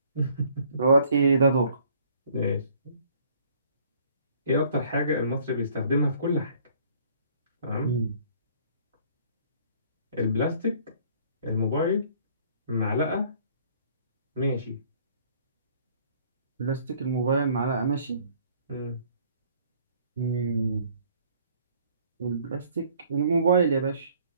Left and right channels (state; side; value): inverted; both; correlation -0.58